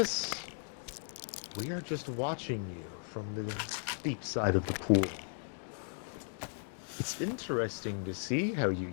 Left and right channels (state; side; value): silent; right; digital silence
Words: we are just watching you from the deep side of the pool. It's interesting to see how you